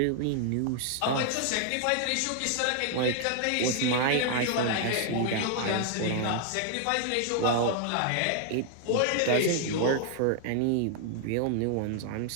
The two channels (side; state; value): both; different; correlation 0.00